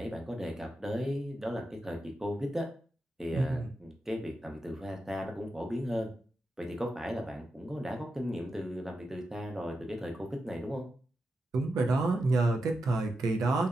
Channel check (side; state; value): both; normal; correlation 0.88